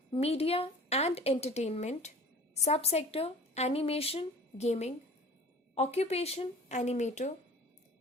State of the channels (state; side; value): normal; both; correlation 0.44